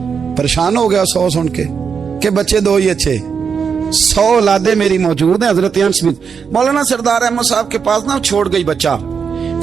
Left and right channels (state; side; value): quieter; left; 6.3 dB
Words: परेशान हो गया 100 सुन के बच्चे 2 ही अच्छे, 100 औलादे मेरी मौजूद हैं। हजरत अनस बिन मौलाना सरदार अहमद साहब के पास ना छोड़ गई बच्चा,